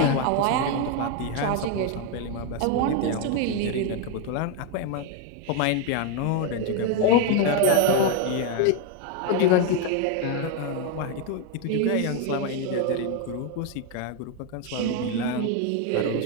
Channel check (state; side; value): different; both; correlation 0.01